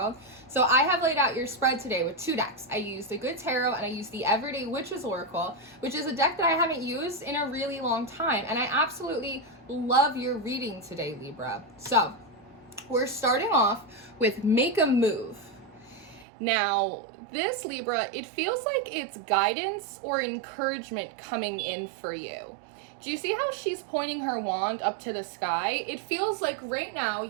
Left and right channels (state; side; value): drops out; left; at 16.2 s